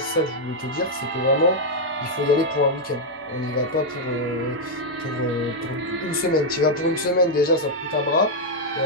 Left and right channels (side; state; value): both; normal; correlation -0.01